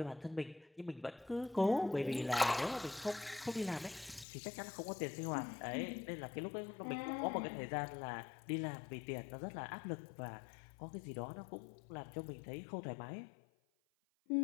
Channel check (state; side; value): drops out; right; at 4.2 s